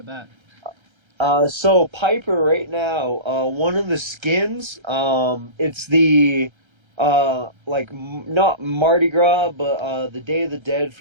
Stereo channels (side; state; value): left; late; 1.3 ms